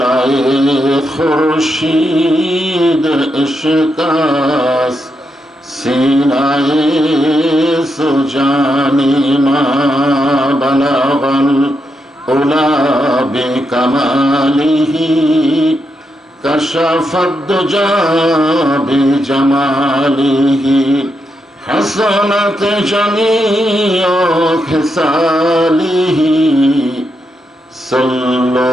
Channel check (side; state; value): both; normal; correlation 0.83